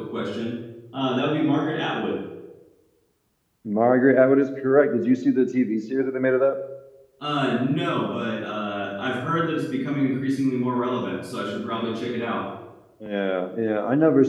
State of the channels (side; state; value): both; identical; correlation 1.00